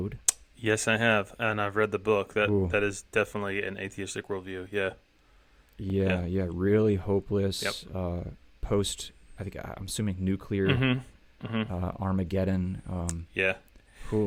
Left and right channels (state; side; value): identical; both; correlation 1.00